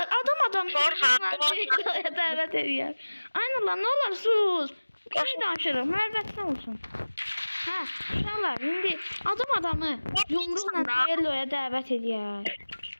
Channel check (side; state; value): both; inverted; correlation -1.00